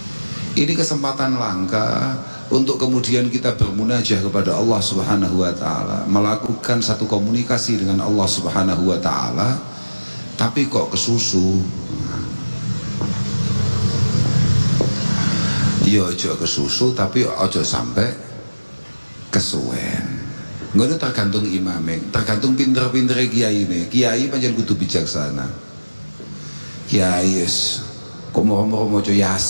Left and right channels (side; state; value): both; inverted; correlation -1.00